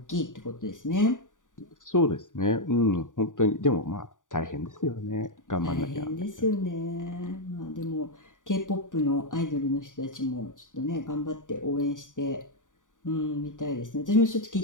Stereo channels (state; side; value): late; right; 0.87 ms